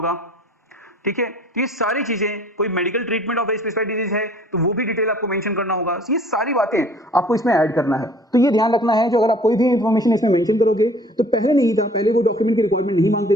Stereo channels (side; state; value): both; normal; correlation 0.52